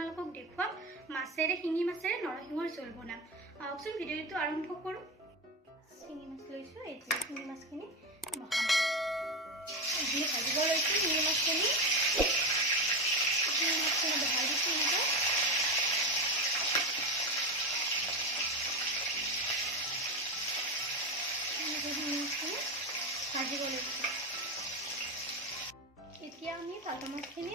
দেখুৱাম মাছেৰে শিঙি মাছেৰে নৰসিংহৰ জোল বনাম। আহকচোন ভিডিঅ'টো আৰম্ভ কৰোঁ। শিঙি মাছ লৈছোঁ, এতিয়া শিঙি মাছখিনি বহাম। এইখিনি ভাজিব লৈছোঁ। শিঙি মাছখিনি বহাই দিছোঁ এনেকৈ। শিঙি মাছখিনি ভাজিব লৈছোঁ। এতিয়া আমি ভাজা মাছখিনি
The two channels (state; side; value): normal; both; correlation 0.17